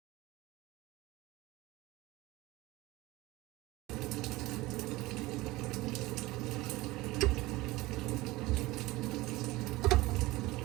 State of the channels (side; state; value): left; quieter; 19.7 dB